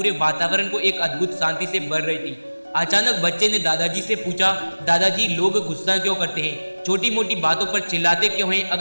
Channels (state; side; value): inverted; both; correlation -1.00